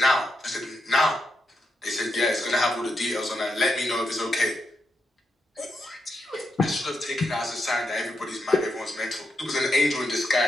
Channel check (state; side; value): normal; both; correlation 0.84